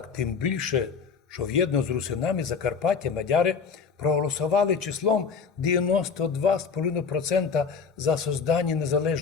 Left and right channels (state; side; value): quieter; right; 5.7 dB